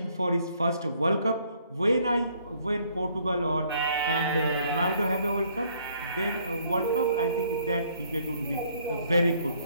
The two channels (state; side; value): inverted; both; correlation -0.64